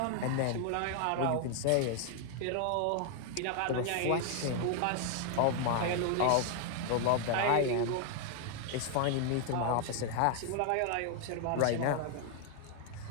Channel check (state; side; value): different; both; correlation 0.00